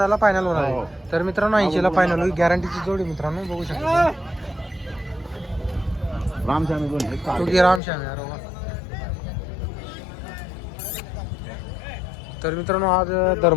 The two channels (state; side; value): drops out; right; at 7.8 s